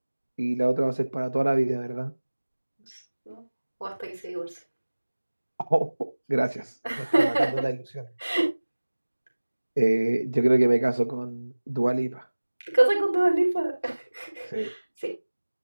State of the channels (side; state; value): both; inverted; correlation -1.00